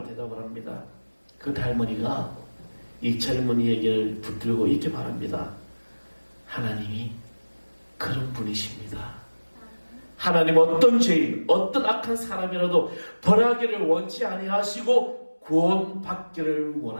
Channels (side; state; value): both; inverted; correlation -1.00